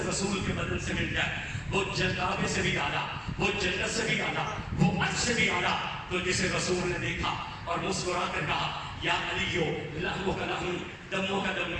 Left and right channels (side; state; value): both; identical; correlation 1.00